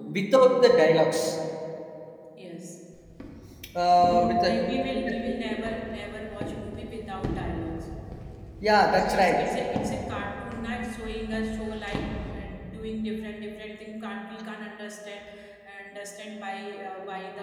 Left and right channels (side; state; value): both; identical; correlation 1.00